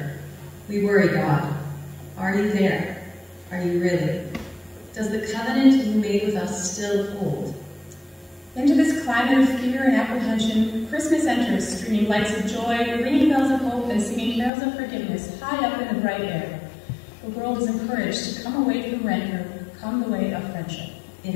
We worry God. Are you there? Are you really? Does the covenant you made with us still hold? Into this climate of fear and apprehension, Christmas enters, streaming lights of joy, ringing bells of hope, and singing carols of forgiveness high up in the bright air. The world is encouraged to come away from rancor, come the way of friendship. It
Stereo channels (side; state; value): right; drops out; at 14.5 s